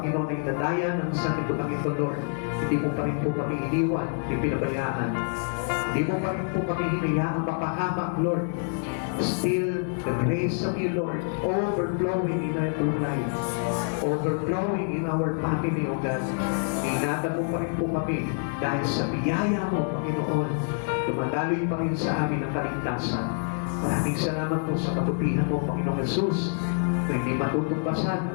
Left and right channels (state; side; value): silent; right; 60 dB below the other